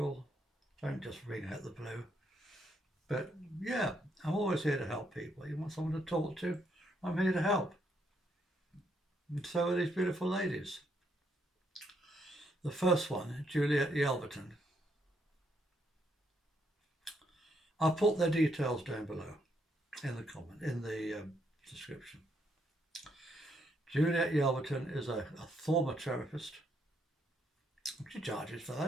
Don't just ring out the blue. But yeah, I'm always here to help people. You want someone to talk to? I'm here to help. And so are these beautiful ladies. The first one, Juliet Yelverton. I'll put their details down below in the description. Juliet Yelverton is a former therapist. She charges for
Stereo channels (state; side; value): normal; both; correlation 0.75